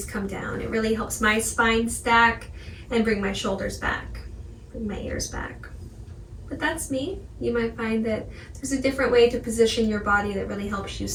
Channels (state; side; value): identical; both; correlation 1.00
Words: come down. It really helps my spine stack and bring my shoulders back, bring my ears back. But that's me. You might find that there's a different way to position your body that really helps you